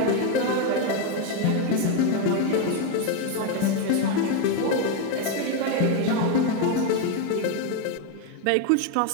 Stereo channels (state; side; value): different; both; correlation 0.02